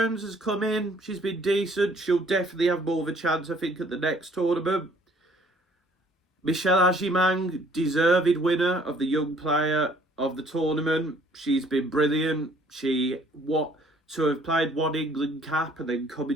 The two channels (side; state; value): both; normal; correlation 0.59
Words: has come in. She's been decent. She'll definitely have more of a chance, I think, at the next tournament. Michelle Agimang, deserved winner of the Young Player of the tournament. She's been brilliant. To have played 1 England cap and then come